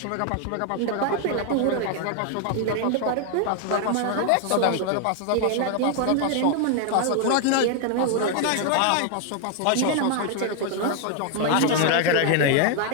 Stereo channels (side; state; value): both; different; correlation 0.00